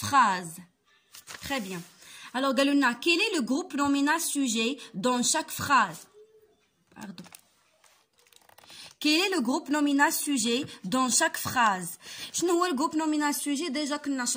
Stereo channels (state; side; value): identical; both; correlation 1.00